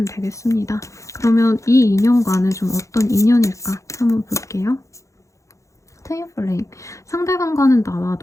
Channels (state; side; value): late; right; 0.15 ms